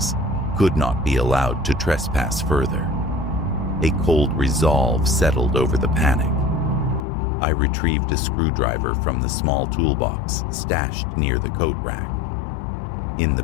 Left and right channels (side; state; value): right; drops out; at 7.0 s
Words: could not be allowed to trespass further. A cold resolve settled over the panic. I retrieved a screwdriver from the small toolbox stashed near the coat rack. In the